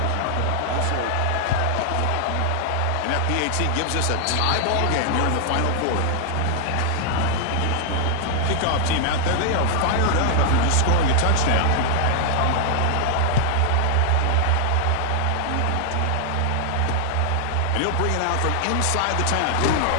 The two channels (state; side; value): different; both; correlation 0.00